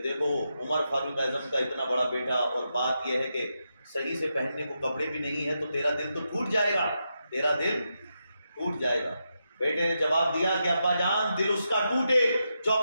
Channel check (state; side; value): inverted; both; correlation -0.85